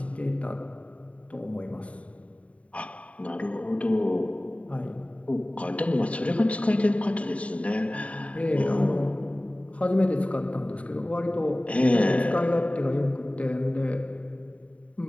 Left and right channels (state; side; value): late; right; 0.066 ms